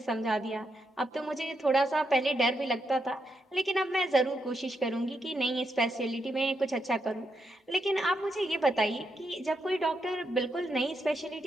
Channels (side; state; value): both; normal; correlation 0.81